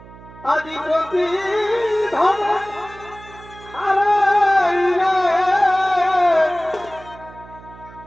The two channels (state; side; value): noise; right; hum, 20 dB below the sound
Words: আদি প্রতি ধন হারাইলে